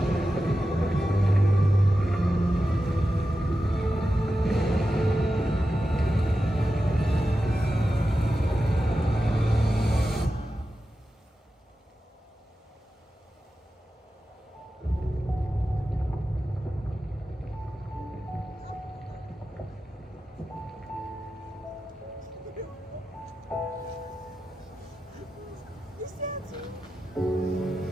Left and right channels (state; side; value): normal; both; correlation 0.92